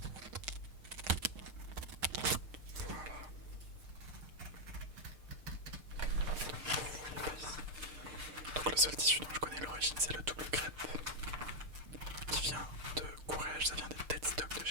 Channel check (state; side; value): late; left; 6.6 ms